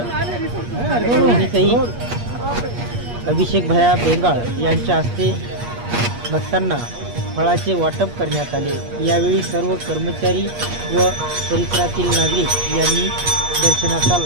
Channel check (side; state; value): left; late; 8.4 ms